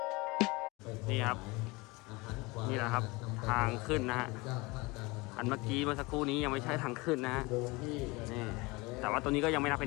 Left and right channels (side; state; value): right; quieter; 24.4 dB